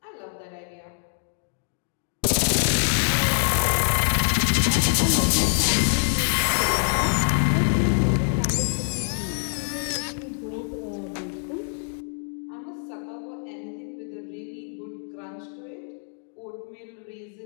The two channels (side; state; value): right; silent; 62 dB below the other